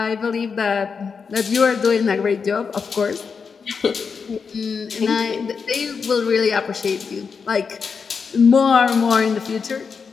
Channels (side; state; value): right; quieter; 5.6 dB